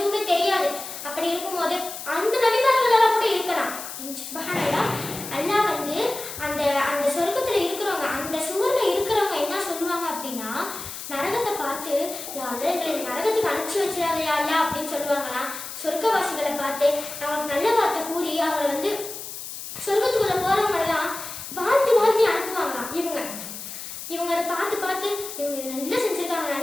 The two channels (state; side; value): noise; left; hiss, 9 dB below the sound